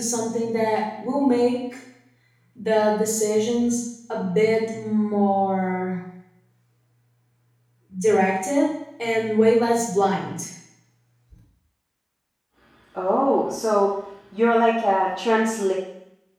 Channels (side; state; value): both; identical; correlation 1.00